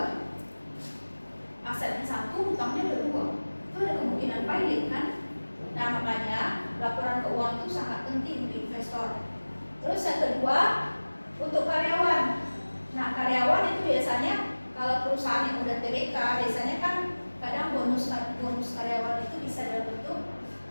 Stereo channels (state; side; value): inverted; both; correlation -1.00